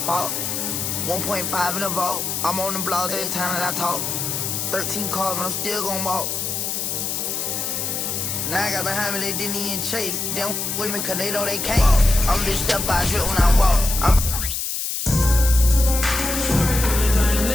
1.5 in the vault. I'm on the blogs every time that I talk. 13 cars, but I'm still gonna walk. Now I got behind me, they didn't even chase. They don't with me cause they know they can't. I'm just step by drip when I walk.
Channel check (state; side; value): noise; left; hiss, 2 dB below the sound